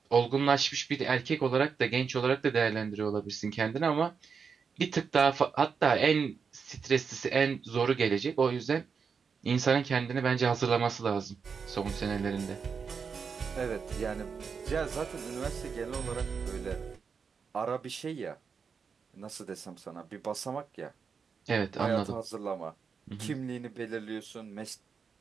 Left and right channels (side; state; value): left; quieter; 5.9 dB